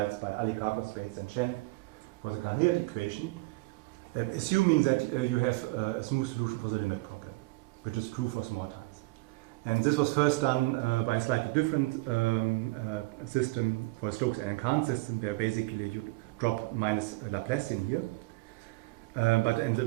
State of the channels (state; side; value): quieter; left; 23.0 dB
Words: by Alikakos, and Chen for the Cahn-Hilliard equation, assuming that you have a smooth solution for the limit problem, which is true for small times. And this was first done by a slightly different system for a Stokes and Cahn system, where basically you drop minus Laplacian here. But